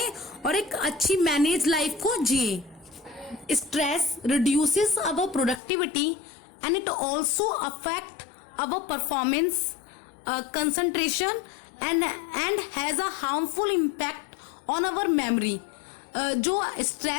और एक अच्छी मैनेज लाइफ को जिए। Stress reduces our productivity and it also affect our performance, concentration and has a harmful impact on our memory. जो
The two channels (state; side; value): drops out; right; at 5.6 s